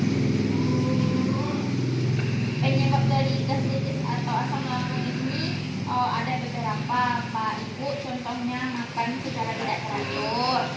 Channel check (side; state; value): both; identical; correlation 1.00